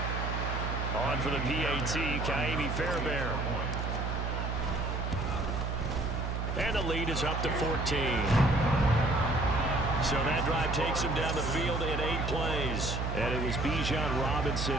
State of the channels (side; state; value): right; noise; hum, 2 dB below the sound